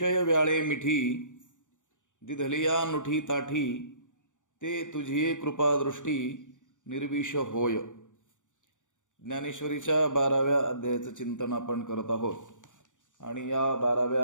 व्याळे मिठी दिधलिया नुठी ताठी ते तुझी कृपादृष्टी निर्विष होय. ज्ञानेश्वरीच्या 12व्या अध्यायाचं चिंतन आपण करत आहोत आणि या 12व्या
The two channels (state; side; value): late; right; 0.86 ms